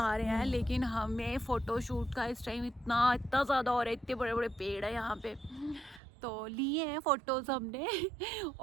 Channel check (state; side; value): drops out; left; at 6.0 s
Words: रहे हैं, लेकिन हमें फ़ोटोशूट का इस टाइम इतना ज़्यादा हो रहा है। इतने बड़े बड़े पेड़ है यहाँ पे, तो लिए हैं फ़ोटोज़ हमने।